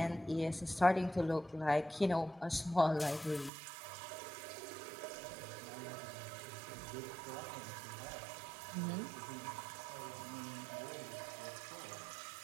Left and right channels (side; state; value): left; drops out; at 3.5 s